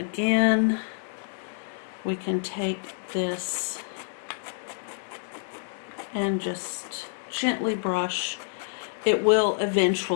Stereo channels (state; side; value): silent; right; digital silence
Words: we can take this and just gently brush. It will